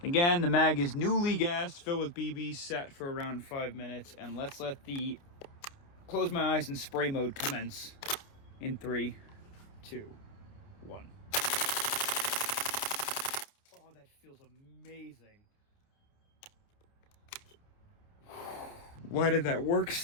Again, the mag is newly gassed, filled with BBs, sat for around 5 minutes, and let's let the close my eyes and spray mode commence in 3, 2, 1. Oh, that feels amazing. Why did that work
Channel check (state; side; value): late; right; 29 ms